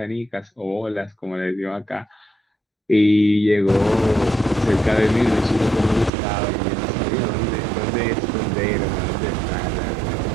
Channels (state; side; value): drops out; left; at 6.1 s